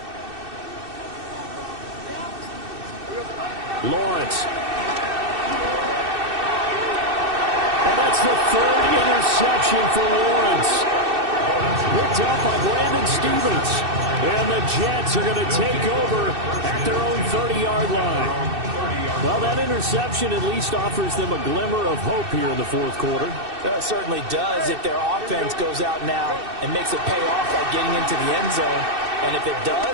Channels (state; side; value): late; left; 2.6 ms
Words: Lawrence. And that's the 3rd interception for Lawrence. Picked up by Brandon Stevens. And the Jets are going to take over at their own 30-yard line. Well, that interception at least offers them a glimmer of hope here in the fourth quarter. It certainly does if their offense goes out now and makes it pay off by getting into the end zone. And if it